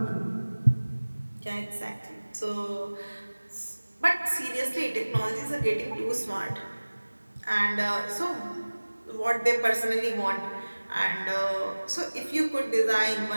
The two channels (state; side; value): inverted; both; correlation -1.00